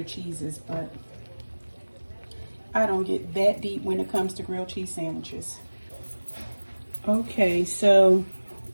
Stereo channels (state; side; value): inverted; both; correlation -1.00